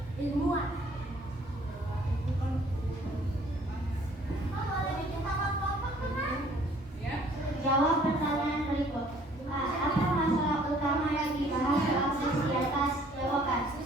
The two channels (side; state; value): both; normal; correlation 0.58